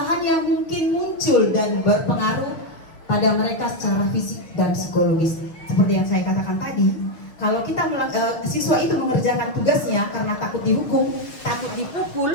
yang mungkin muncul dan berpengaruh pada mereka secara fisik dan psikologis. Seperti yang saya katakan tadi, kalau kita siswa itu mengerjakan tugasnya karena takut dihukum, takut dipukul,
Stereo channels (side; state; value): right; late; 6.4 ms